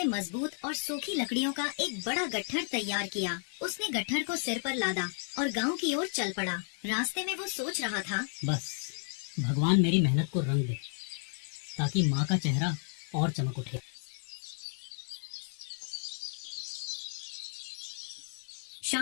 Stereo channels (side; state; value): right; silent; 56 dB below the other